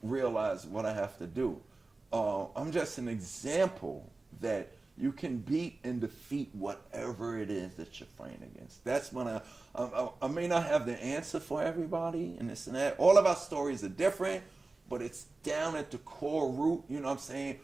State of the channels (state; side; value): quieter; left; 3.4 dB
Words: realize what I have to do. I'm just an example that you can beat and defeat whatever it is that you're fighting against. That's when I may not have the answer for everybody and this and that. All of our stories are different, but it's down at the core root, you know what I'm saying?